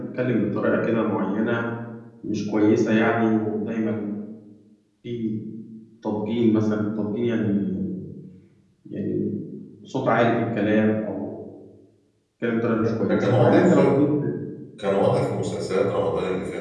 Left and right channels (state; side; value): identical; both; correlation 1.00